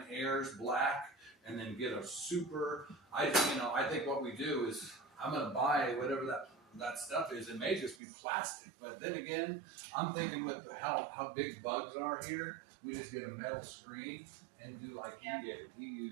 Airs black, and then get a super. I think what we do is I'm gonna buy whatever that stuff is. It may just be plastic, but then again, I'm thinking with how big bugs are here, we just get a metal screen and do like he did. He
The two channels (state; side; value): drops out; left; at 8.0 s